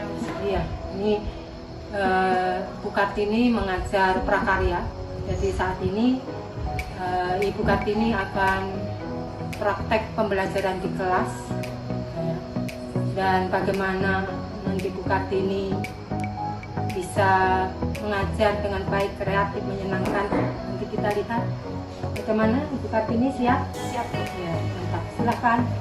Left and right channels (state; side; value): identical; both; correlation 1.00